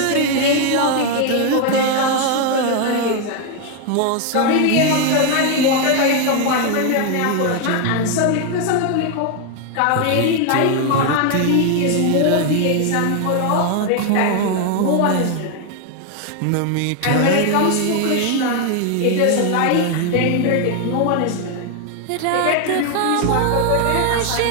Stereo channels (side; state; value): both; different; correlation 0.01